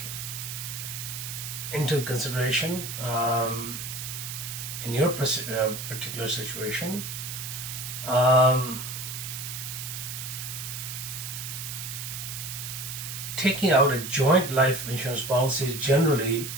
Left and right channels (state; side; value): noise; right; hiss, 7 dB below the sound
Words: into consideration in your particular situation, um, taking out a joint life insurance policy is generally